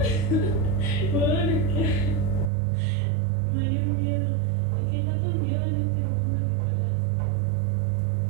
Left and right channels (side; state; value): left; drops out; at 2.5 s